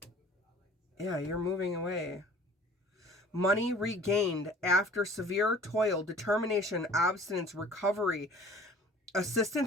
Yeah, you're moving away. Money regained after severe toil, determination, abstinence, recovery,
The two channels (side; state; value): both; normal; correlation 0.48